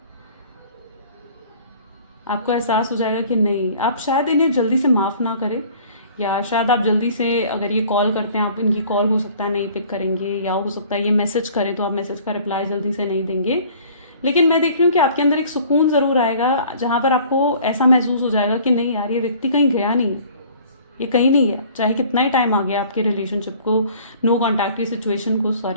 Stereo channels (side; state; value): both; inverted; correlation -0.51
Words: आपको एहसास हो जाएगा कि नहीं, आप शायद इन्हें जल्दी से माफ़ ना करें, या शायद आप जल्दी से अगर ये कॉल करते हैं आप इनकी कॉल हो सकता है नहीं पिक करेंगे, या हो सकता है ये मैसेज करें तो आप मैसेज का रिप्लाई जल्दी से नहीं देंगे। लेकिन मैं देख रही हूँ कि आपके अंदर एक सुकून ज़रूर आएगा जहाँ पर आपको ऐसा महसूस हो जाएगा कि नहीं यार ये व्यक्ति कहीं गया नहीं है, ये कहीं नहीं है, चाहे कितना ही टाइम आ गया आपके रिलेशनशिप को, नो कॉन्टैक्ट की सिचुएशन को,